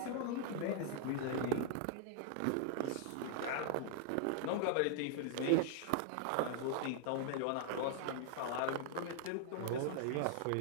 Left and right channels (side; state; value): both; different; correlation 0.00